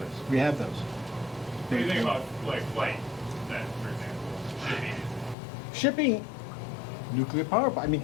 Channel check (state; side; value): drops out; right; at 5.4 s